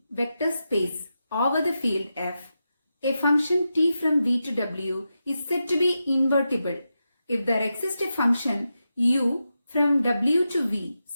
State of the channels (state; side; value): inverted; both; correlation -0.89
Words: vector space over the field F. A function t from V to W is said to be invertible if there exists a function u from W to V